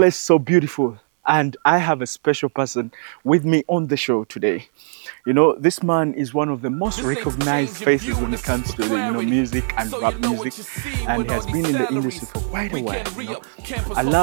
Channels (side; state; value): left; silent; digital silence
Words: is so beautiful. And I have a special person with me on the show today. This man is one of the most recognized faces when it comes to music and rap music, and he has been in the industry for quite a while. I